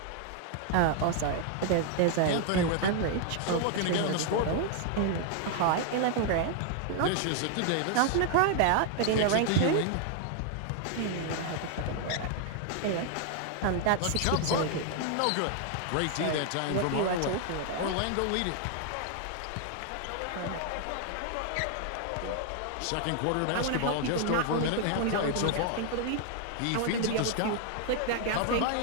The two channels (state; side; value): different; both; correlation 0.00